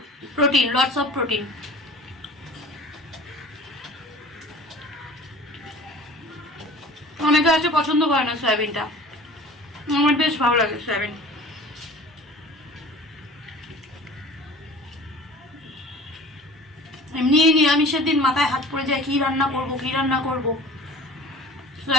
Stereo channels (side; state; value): both; normal; correlation 0.43